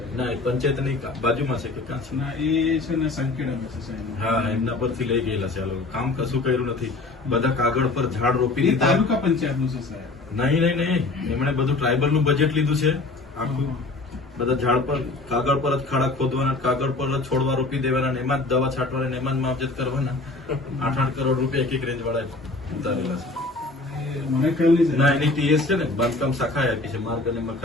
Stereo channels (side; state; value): right; quieter; 3.3 dB